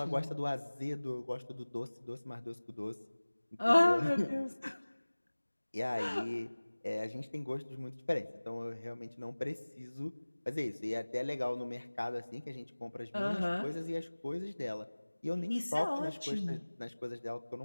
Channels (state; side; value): inverted; both; correlation -1.00